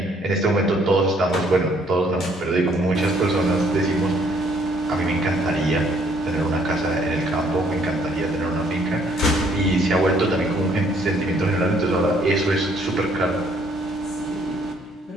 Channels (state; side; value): normal; both; correlation 0.64